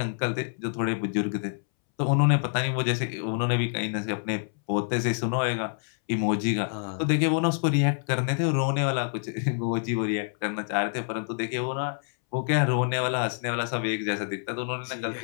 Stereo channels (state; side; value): silent; right; 60 dB below the other